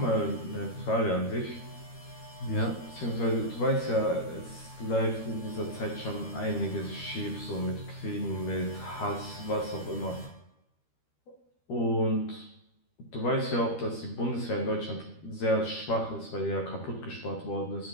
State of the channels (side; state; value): right; late; 13 ms